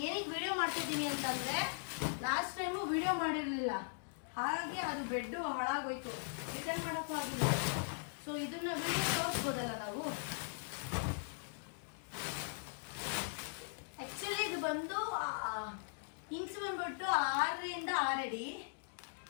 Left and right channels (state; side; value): silent; right; digital silence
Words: ಏನಕ್ಕೆ ವಿಡಿಯೋ ಮಾಡ್ತಿದ್ದೀನಿ ಅಂತಂದರೆ, ಲಾಸ್ಟ್ ಟೈಮು ವಿಡಿಯೋ ಮಾಡಿರಲಿಲ್ಲ, ಹಾಗೆ ಅದು ಬೆಡ್ಡು ಹಾಳಾಗೋಯ್ತು, ರಿಟರ್ನ್ ಮಾಡೋಕ್ಕೂ ಆಗಿಲ್ಲ. ಸೊ ಇದನ್ನ ವಿಡಿಯೋ ತೋರಿಸ್ಬೋದಲ್ಲ ನಾವು. ಆ್ಯಕ್ಚುಲಿ ಇದು ಬಂದು ಇಂಚ್ ಬಂದ್ಬಿಟ್ಟು 6ರಿಂದ 6 ಅಡಿ,